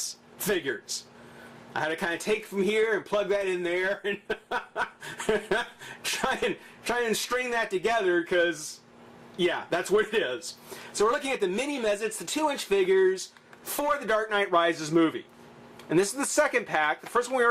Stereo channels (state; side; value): identical; both; correlation 1.00